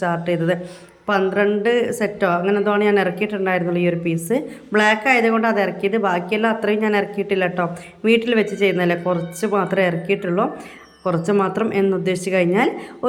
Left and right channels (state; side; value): identical; both; correlation 1.00